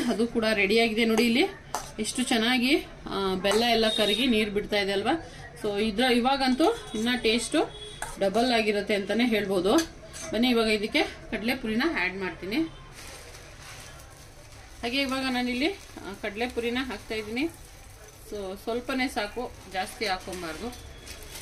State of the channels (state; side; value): identical; both; correlation 1.00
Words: ಅದು ಕೂಡ ರೆಡಿಯಾಗಿದೆ. ನೋಡಿ ಇಲ್ಲಿ ಎಷ್ಟು ಚೆನ್ನಾಗಿ ಬೆಲ್ಲ ಎಲ್ಲ ಕರಗಿ ನೀರು ಬಿಡ್ತಾ ಇದೆ ಅಲ್ವಾ. ಸೊ ಇವಾಗಂತೂ ಇನ್ನ ಟೇಸ್ಟು ಡಬಲ್ ಆಗಿರುತ್ತೆ ಅಂತಾನೆ ಹೇಳ್ಬೋದು. ಬನ್ನಿ ಇವಾಗ ಇದಕ್ಕೆ ಕಡಲೆಪುರಿನ ಆ್ಯಡ್ ಮಾಡ್ತೀನಿ. ಹಾಗೆ ಇವಾಗ ನಾನಿಲ್ಲಿ ಕಡಲೆಪುರಿನ ಹಾಕ್ತಾ ಇದ್ದೀನಿ. ಸೊ ಸ್ವಲ್ಪನೇ ಸಾಕು, ಜಾಸ್ತಿ ಹಾಕೊಂಬಾರ್ದು.